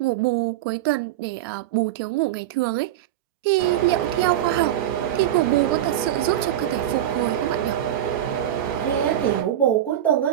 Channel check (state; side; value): quieter; left; 12.0 dB